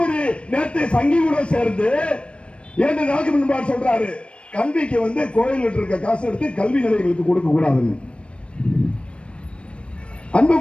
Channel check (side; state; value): right; late; 0.059 ms